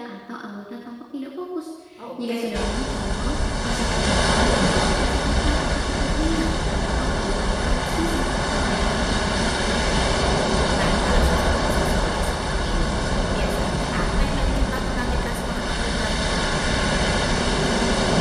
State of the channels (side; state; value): both; identical; correlation 1.00